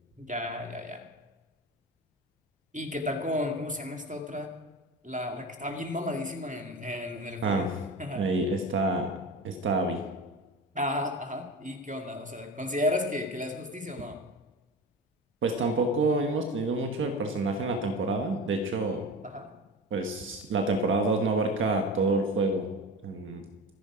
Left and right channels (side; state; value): both; normal; correlation 0.30